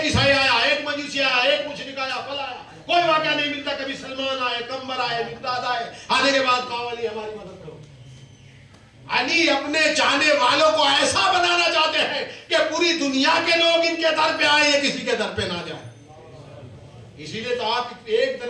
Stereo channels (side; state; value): both; identical; correlation 1.00